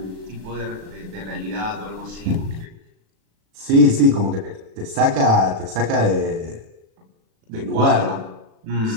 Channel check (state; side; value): late; left; 36 ms